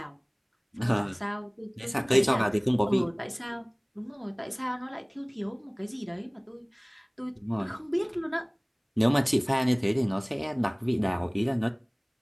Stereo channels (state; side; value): identical; both; correlation 1.00